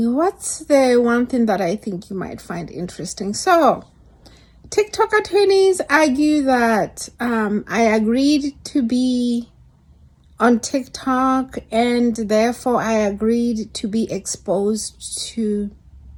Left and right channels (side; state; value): both; identical; correlation 1.00